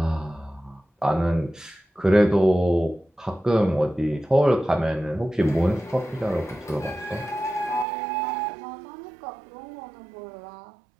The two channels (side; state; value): left; drops out; at 7.9 s